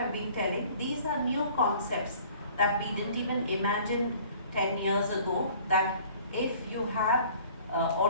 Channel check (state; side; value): inverted; both; correlation -0.52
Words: been telling. These are new concepts that we didn't even imagine 10 years ago, that if you have